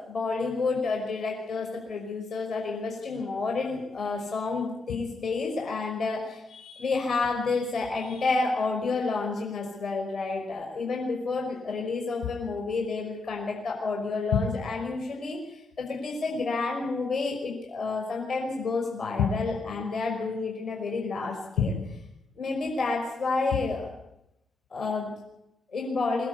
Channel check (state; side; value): quieter; right; 3.7 dB